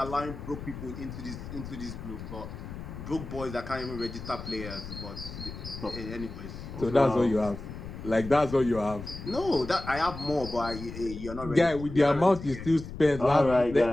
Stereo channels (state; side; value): noise; left; rumble, 10 dB below the sound